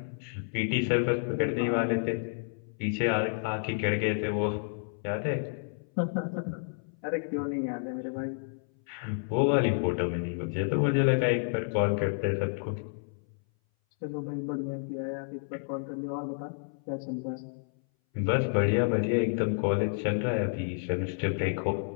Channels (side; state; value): right; silent; 58 dB below the other